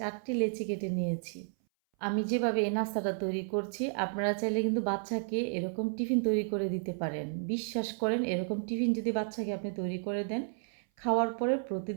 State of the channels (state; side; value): silent; left; 56 dB below the other